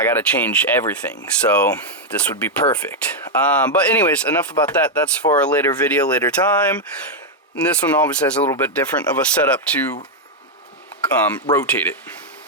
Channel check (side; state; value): both; normal; correlation 0.00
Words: gotta change everything, so this would be perfect. But anyways, enough about that. That's for a later video, later time. And this one obviously has a little bit different of a setup to rotate it.